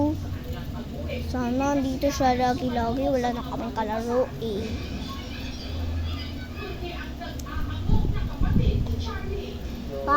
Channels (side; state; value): both; identical; correlation 1.00